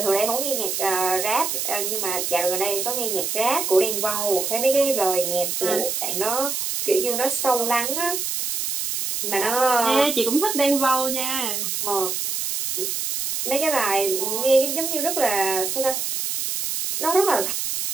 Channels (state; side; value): noise; right; hiss, 2 dB below the sound